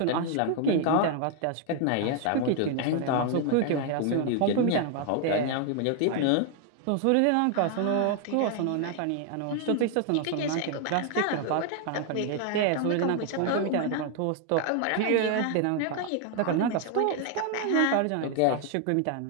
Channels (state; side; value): different; both; correlation 0.00